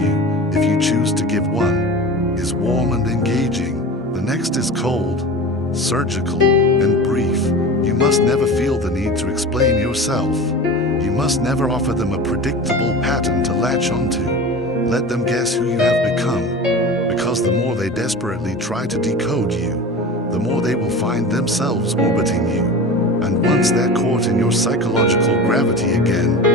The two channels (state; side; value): normal; both; correlation 0.32